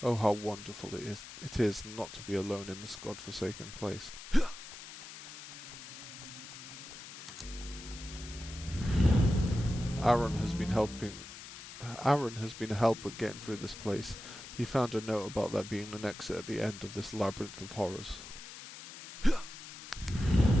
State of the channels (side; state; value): left; noise; hiss, 13 dB below the sound